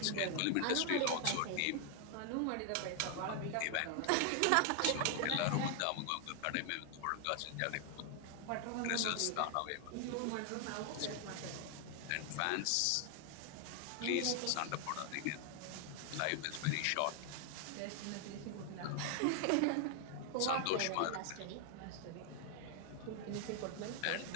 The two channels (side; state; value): both; different; correlation 0.00